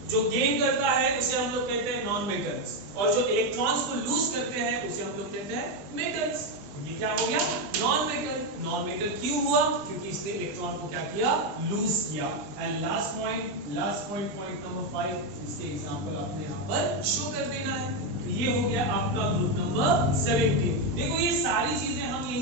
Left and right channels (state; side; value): late; left; 20 ms